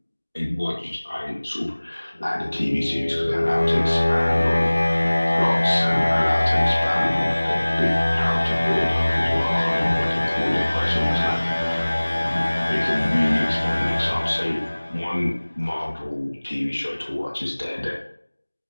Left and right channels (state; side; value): inverted; both; correlation -1.00